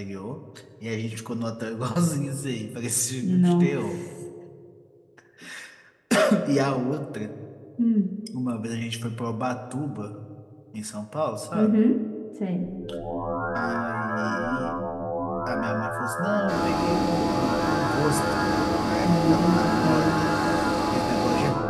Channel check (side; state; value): both; identical; correlation 1.00